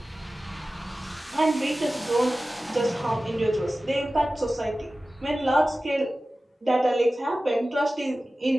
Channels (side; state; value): both; normal; correlation 0.96